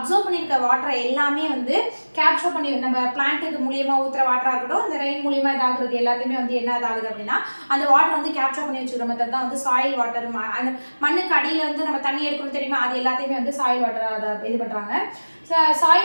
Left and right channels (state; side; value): inverted; both; correlation -1.00